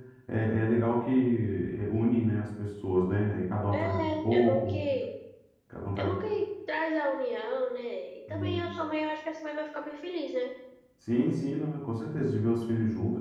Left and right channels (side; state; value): both; identical; correlation 1.00